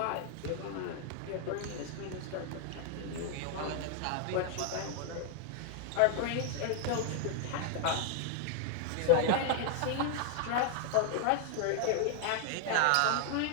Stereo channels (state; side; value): different; both; correlation 0.00